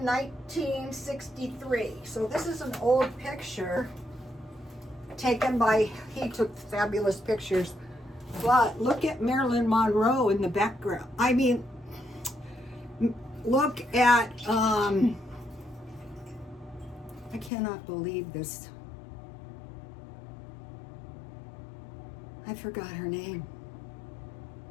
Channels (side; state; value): right; drops out; at 17.5 s